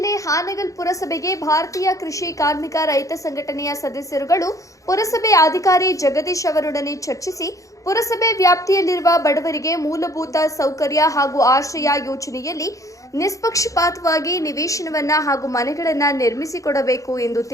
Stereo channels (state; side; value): late; right; 0.16 ms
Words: ಹಾನಗಲ್ ಪುರಸಭೆಗೆ ಭಾರತೀಯ ಕೃಷಿ ಕಾರ್ಮಿಕ ರೈತ ಸಂಘಟನೆಯ ಸದಸ್ಯರುಗಳು ಪುರಸಭೆ ಅಧಿಕಾರಿ ಜಗದೀಶ್ ಅವರೊಡನೆ ಚರ್ಚಿಸಿ ಪುರಸಭೆ ವ್ಯಾಪ್ತಿಯಲ್ಲಿರುವ ಬಡವರಿಗೆ ಮೂಲಭೂತ ಸೌಕರ್ಯ ಹಾಗೂ ಆಶ್ರಯ ಯೋಜನೆಯಲ್ಲಿ ನಿಷ್ಪಕ್ಷಪಾತವಾಗಿ ನಿವೇಶನವನ್ನ ಹಾಗೂ ಮನೆಗಳನ್ನು ನಿರ್ಮಿಸಿಕೊಡಬೇಕು ಎಂದು